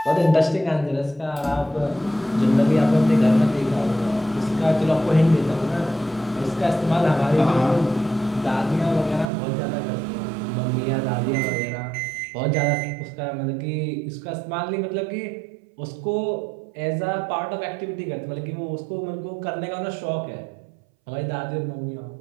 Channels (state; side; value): drops out; left; at 9.3 s